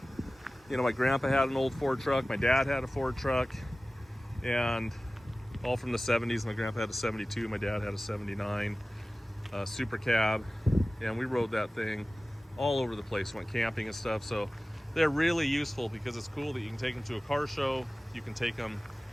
my grandpa had an old Ford truck, my dad had a Ford truck, and all from the 70s. My grandpa had a 72, my dad had a 79 Super Cab, and we rode that thing all over the place, went camping and stuff. So they're really useful because it's cool that you can take them to a car show. You can take them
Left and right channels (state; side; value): normal; both; correlation 0.97